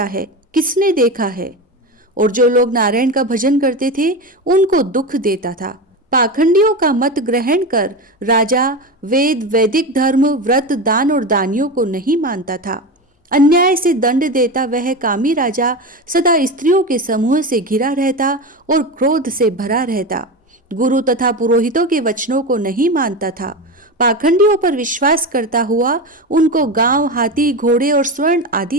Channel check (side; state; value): both; normal; correlation 0.21